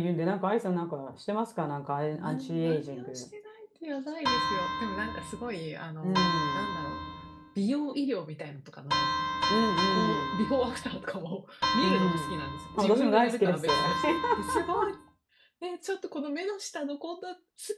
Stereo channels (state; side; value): identical; both; correlation 1.00